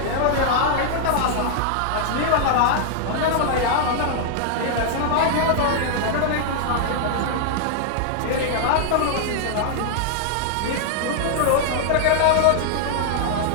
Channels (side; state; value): both; different; correlation -0.01